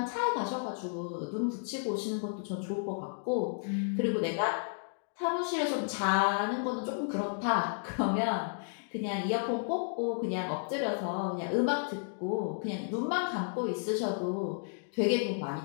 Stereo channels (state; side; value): silent; right; digital silence